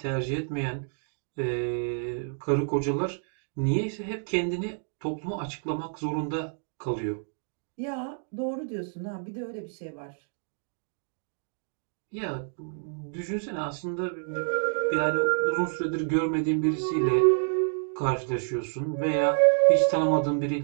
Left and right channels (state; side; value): silent; left; 59 dB below the other